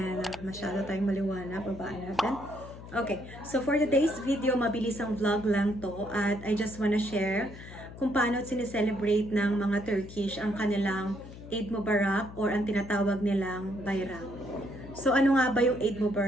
masyado tayong maliwanag, babaan natin. Okay, so for today's video, mabilis ang vlog lang to at I just wanna share kung paano sineselebrate ng mga Turkish ang kanilang Eid Mubarak or ang tinatawag nilang Bayram. So ano nga ba yung Eid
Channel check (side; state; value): left; noise; hum, 14 dB below the sound